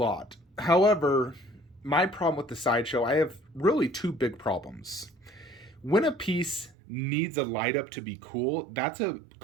However, my problem with the Sideshow, I have really two big problems. When a piece needs a light up to be cool, that's a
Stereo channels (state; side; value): drops out; left; at 6.8 s